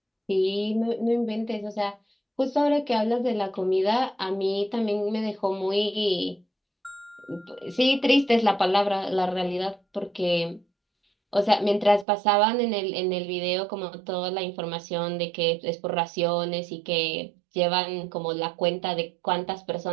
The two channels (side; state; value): left; drops out; at 12.1 s